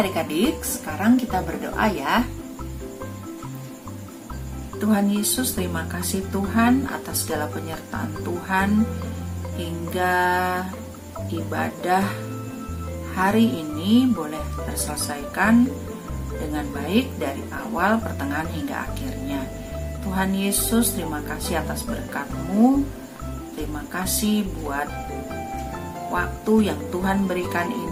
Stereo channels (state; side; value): identical; both; correlation 1.00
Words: sekarang kita berdoa ya. Tuhan Yesus, terima kasih Tuhan atas segala penyertaan Tuhan hingga ibadah hari ini boleh terselesaikan dengan baik dari awal, pertengahan hingga akhirnya. Tuhan Yesus, terima kasih atas berkat-Mu. Terima kasih buat waktu yang Tuhan berikan